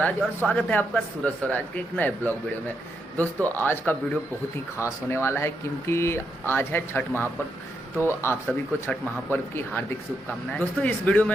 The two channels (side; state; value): both; normal; correlation 0.81